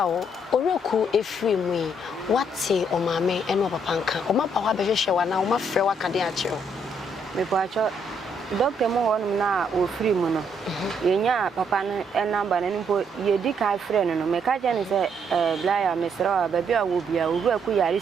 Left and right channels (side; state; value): both; normal; correlation 0.72